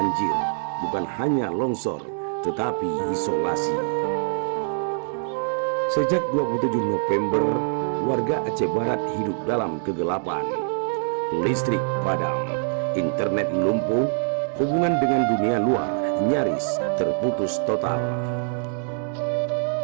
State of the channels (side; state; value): left; silent; digital silence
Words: bukan hanya longsor, tetapi isolasi. Sejak 27 November, warga Aceh Barat hidup dalam kegelapan. Listrik padam, internet lumpuh, hubungan dengan dunia luar nyaris terputus total.